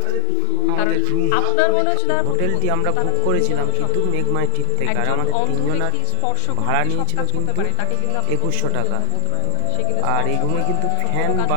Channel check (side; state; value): both; different; correlation 0.00